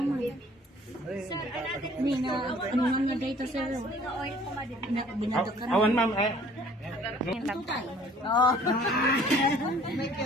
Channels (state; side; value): normal; both; correlation 0.54